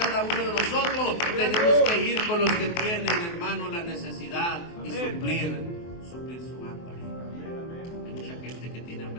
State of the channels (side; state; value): right; late; 24 ms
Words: uno de nosotros. Tenemos que ir con los que tienen, hermano, la necesidad y suplir su hambre. Hay mucha gente que tiene